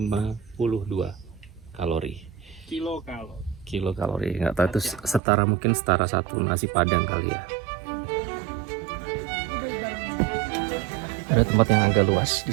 kalori. Kilokalori. Nggak tahu itu setara, mungkin setara 1 nasi padang kali ya. Ada tempat yang agak luas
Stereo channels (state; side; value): drops out; left; at 5.2 s